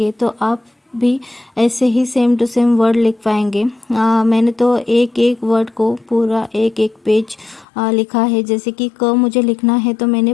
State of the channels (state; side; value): drops out; right; at 7.7 s